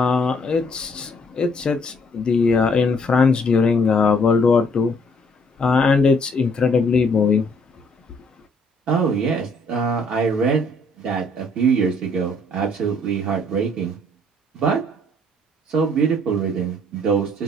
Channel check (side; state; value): both; normal; correlation 0.64